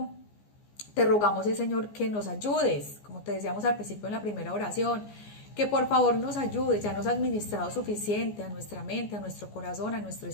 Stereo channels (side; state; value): right; late; 14 ms